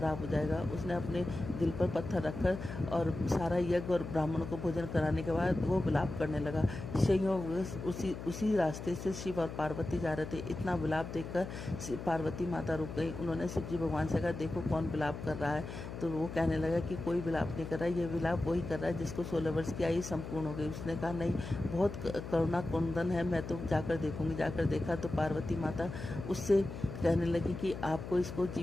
हो जाएगा। उसने अपने दिल पर पत्थर रखकर और सारा यज्ञ और ब्राह्मणों को भोजन कराने के बाद वो विलाप करने लगा। संयोग उसी रास्ते से शिव और पार्वती जा रहे थे। इतना विलाप देखकर पार्वती माता रुक गई। उन्होंने शिव जी भगवान से कहा, देखो कौन विलाप कर रहा है। तो वो कहने लगा कि कोई विलाप नहीं कर रहा है, ये विलाप वही कर रहा है जिसको 16 वर्ष की आयु संपूर्ण हो गई। उसने कहा, नहीं, बहुत करुणा कुंदन है, मैं तो जाकर देखूंगी। जाकर देखा तो पार्वती माता उससे कहने लगी कि आपको इसको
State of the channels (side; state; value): left; noise; hum, 9 dB below the sound